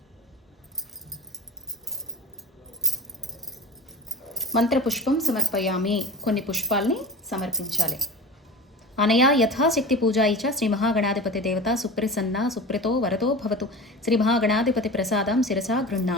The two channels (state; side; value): normal; both; correlation 0.33